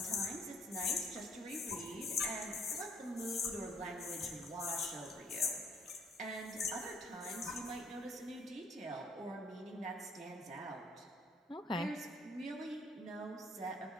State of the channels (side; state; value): both; normal; correlation 0.63